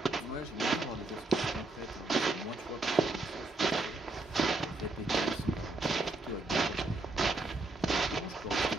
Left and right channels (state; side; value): quieter; left; 3.1 dB